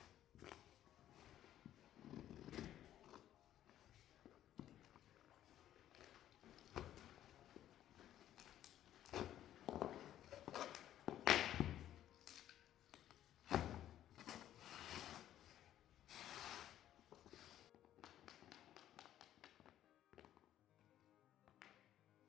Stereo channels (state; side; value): quieter; right; 12.0 dB